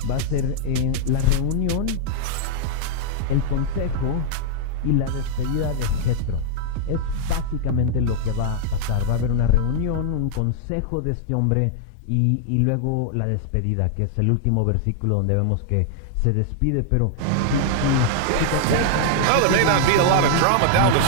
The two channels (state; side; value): different; both; correlation -0.01